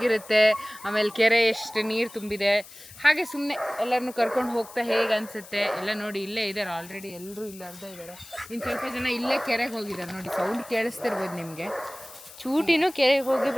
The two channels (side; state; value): left; noise; hiss, 18 dB below the sound